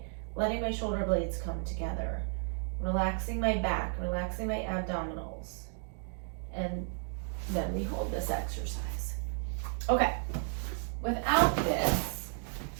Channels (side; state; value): left; silent; 56 dB below the other